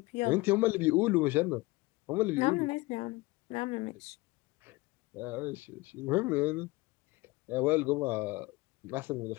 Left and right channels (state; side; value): quieter; right; 22.1 dB